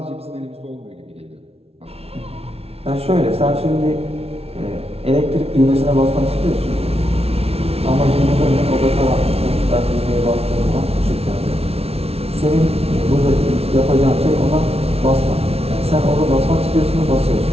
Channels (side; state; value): left; late; 0.30 ms